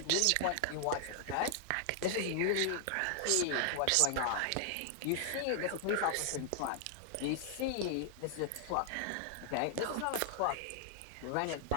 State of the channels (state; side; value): different; both; correlation 0.00